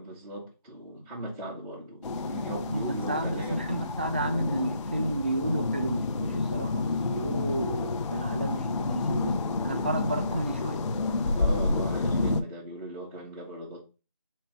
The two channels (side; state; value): both; inverted; correlation -0.73